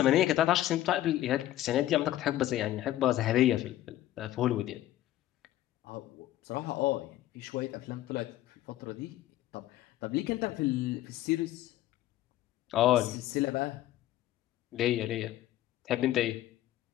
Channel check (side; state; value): right; quieter; 14.0 dB